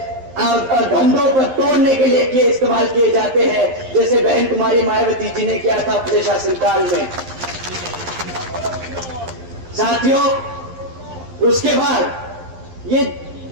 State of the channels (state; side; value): late; left; 11 ms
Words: धंधों पर तोड़ने के लिए इस्तेमाल किए जाते हैं, जैसे बहन कुमारी मायावती जी ने किया था अपने शासनकाल में। साथियों, उसके बाद ये